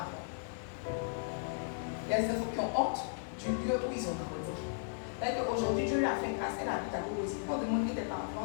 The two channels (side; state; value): right; silent; 54 dB below the other